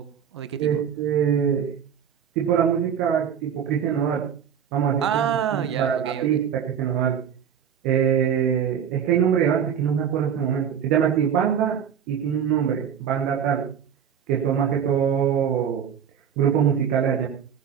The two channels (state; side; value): quieter; left; 8.3 dB